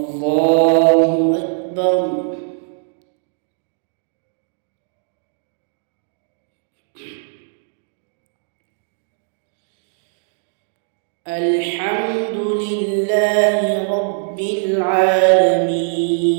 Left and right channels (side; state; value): left; silent; digital silence